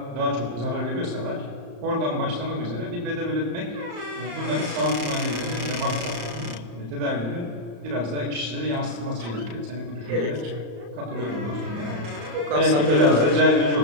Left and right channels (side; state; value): left; late; 34 ms